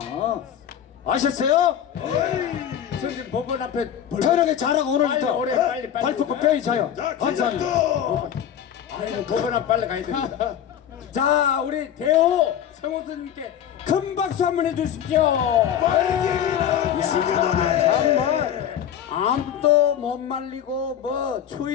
아셨어요? 선생님 법원 앞에 편하게 잘하고 오늘부터 빨리 발포고 뼈이 자요. 감사합니다. 아이고 법원 앞 빨리 가야 됩니다. 자 우리 대호 성호수님께 큰 박수 한번 해주십시오. 정말 아무도 못 말리고 뭐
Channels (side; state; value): right; quieter; 9.6 dB